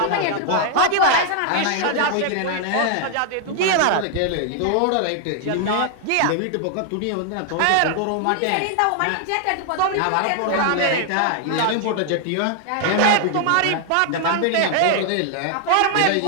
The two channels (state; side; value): different; both; correlation 0.00